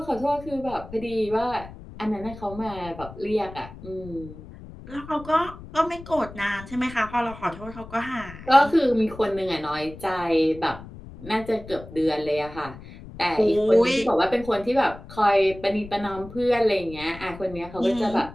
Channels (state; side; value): noise; left; rumble, 16 dB below the sound